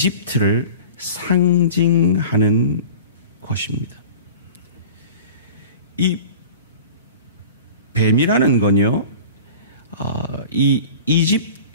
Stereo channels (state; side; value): inverted; both; correlation -0.40